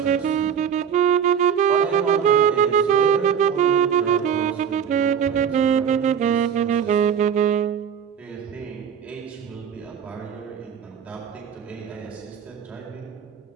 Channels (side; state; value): left; quieter; 7.9 dB